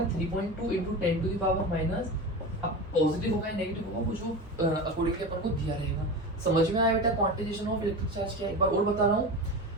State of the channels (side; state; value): both; normal; correlation 0.27